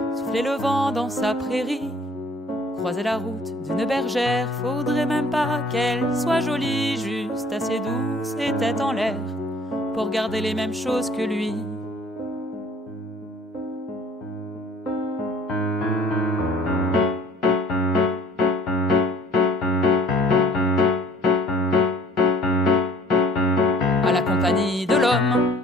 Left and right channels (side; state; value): both; normal; correlation 0.54